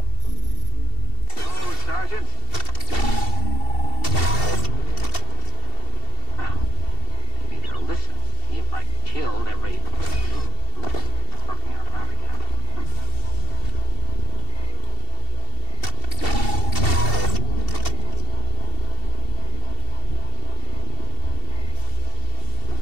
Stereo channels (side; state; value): right; late; 2.7 ms